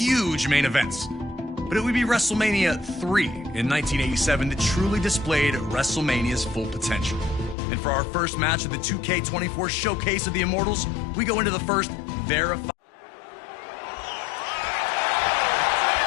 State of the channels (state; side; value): drops out; right; at 7.6 s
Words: main events. But it would be WrestleMania 3 in 1987 that truly displayed WrestleMania's full potential. And for our first match of the 2K24 Showcase of the Immortals, we go into the first verified.